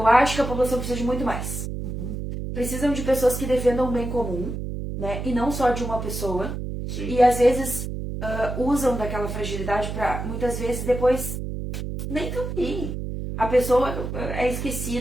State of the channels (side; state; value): right; noise; hum, 5 dB below the sound